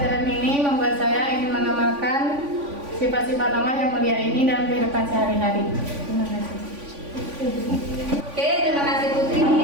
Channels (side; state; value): left; late; 3.5 ms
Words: ini membuat saya ingin mengamalkan sifat-sifat Allah yang mulia ini dalam kehidupan sehari-hari. Terima kasih. Oke, terima kasih Putri.